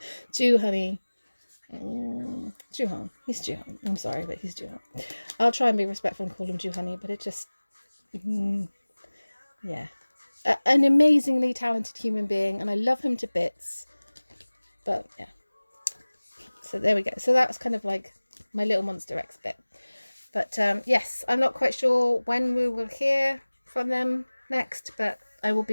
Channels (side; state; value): both; inverted; correlation -1.00